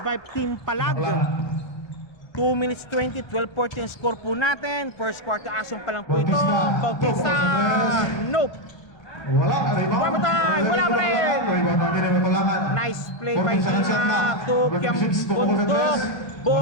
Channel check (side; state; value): right; late; 1.3 ms